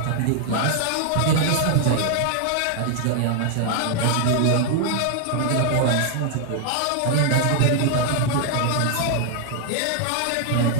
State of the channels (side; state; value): both; different; correlation 0.00